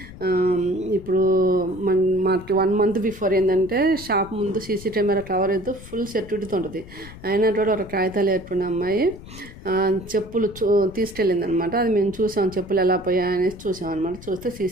ఇప్పుడు మాకు 1 month బిఫోర్ ఏంటంటే షాప్ ముందు సీసీ కెమెరా కవర్ అయితే ఫుల్ సెక్యూరిటీతో ఉంటుంది. అయినా కూడా ఒక కాగితాలు ఏర్పడిన అమ్మాయి చెప్పులు తీసుకెళ్ళింది అనమాట. అది మేము చూసాం, చెప్పులు ఎలా పోయాయనేసి చూసాం అనమాట. చూస్తే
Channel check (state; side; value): noise; left; rumble, 16 dB below the sound